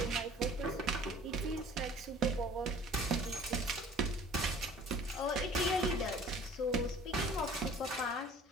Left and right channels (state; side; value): normal; both; correlation 0.49